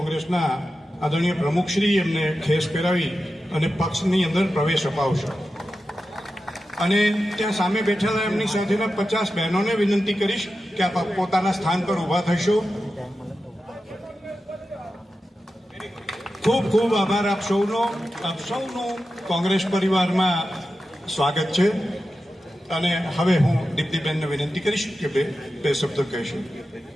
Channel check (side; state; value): both; normal; correlation 0.92